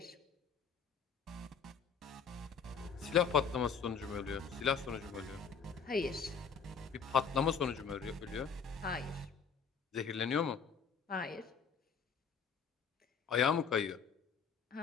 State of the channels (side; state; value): right; quieter; 6.2 dB